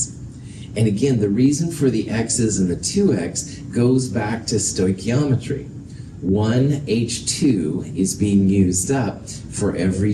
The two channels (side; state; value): both; identical; correlation 1.00